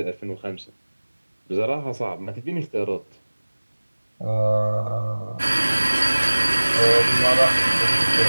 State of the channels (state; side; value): inverted; both; correlation -1.00